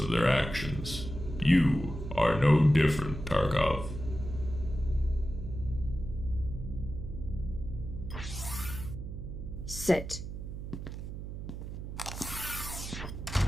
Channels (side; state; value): right; noise; hum, 8 dB below the sound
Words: their actions. You are no different, Tarkov. Sit.